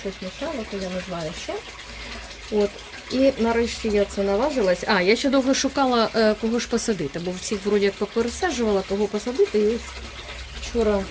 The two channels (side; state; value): both; identical; correlation 1.00